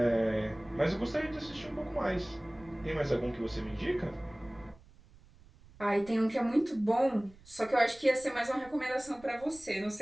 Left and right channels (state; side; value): noise; right; rumble, 24 dB below the sound